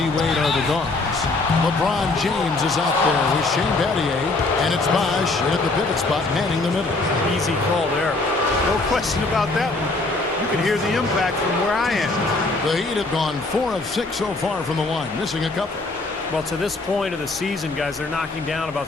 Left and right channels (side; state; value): right; quieter; 3.3 dB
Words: are the guards. LeBron James is out there with Shane Battier, and it's Bosh in at the pivot spot, manning the middle. Easy call there. No question about that one. You can hear the impact from where I am. The Heat have gone 4 of 6 so far from the line, missing a couple. Well, to this point of the season, guys, they're knocking down about